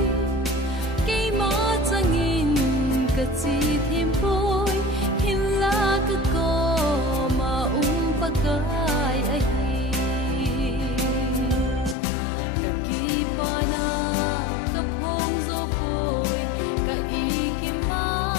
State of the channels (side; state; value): right; drops out; at 12.0 s